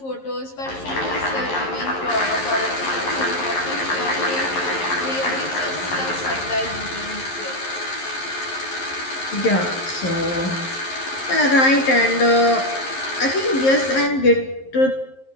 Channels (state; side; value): late; right; 11 ms